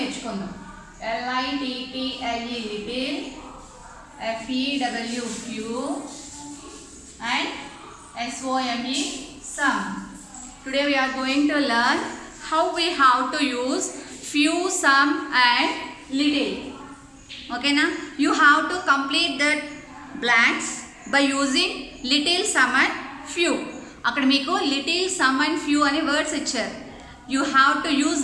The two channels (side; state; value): both; identical; correlation 1.00